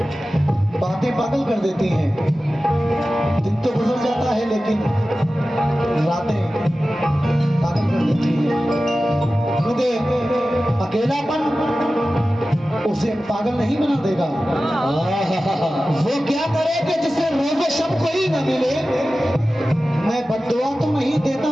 बातें पागल कर देती हैं। दिन तो गुजर जाता है लेकिन रातें पागल कर देती हैं, क्योंकि अकेलापन उसे पागल नहीं बना देगा। वो क्या करे कि जिसे रोज़ शब कोई न मिले। मैं बद्दुआ तो नहीं देता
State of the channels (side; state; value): both; normal; correlation 0.95